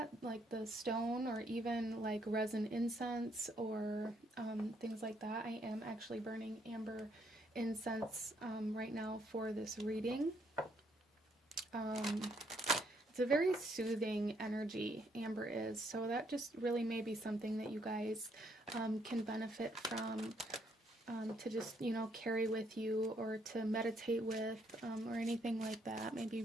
like the stone or even like resin incense or things like that. I am actually burning amber incense right now for this reading. It's a very soothing energy, amber is, so that just really may be something that you guys can benefit from, to just, carry with you or to meditate with, or anything like that. May be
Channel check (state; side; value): normal; both; correlation 0.71